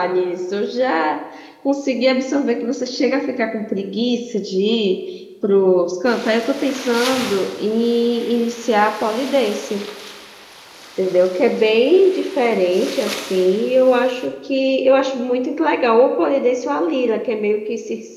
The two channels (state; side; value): identical; both; correlation 1.00